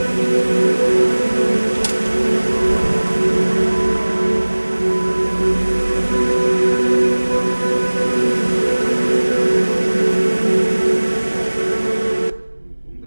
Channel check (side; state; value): both; inverted; correlation -1.00